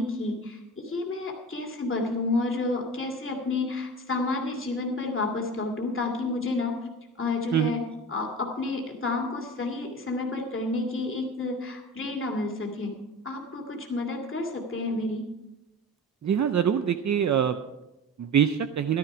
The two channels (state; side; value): normal; both; correlation 0.32